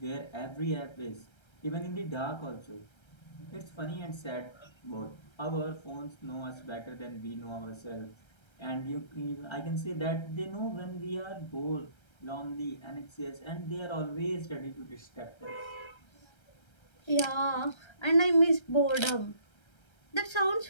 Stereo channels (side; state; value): right; late; 1.3 ms